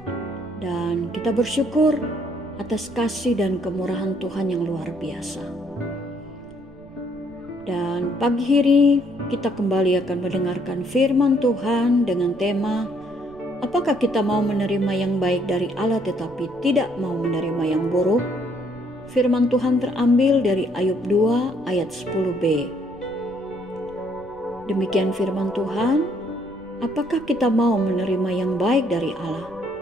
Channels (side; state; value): right; noise; rumble, 24 dB below the sound